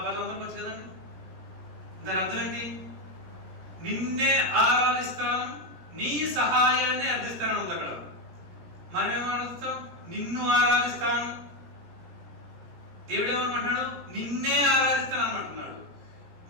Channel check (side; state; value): left; late; 17 ms